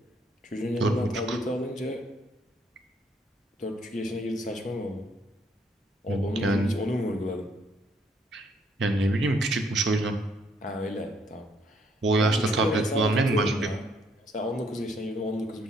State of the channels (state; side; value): normal; both; correlation 0.68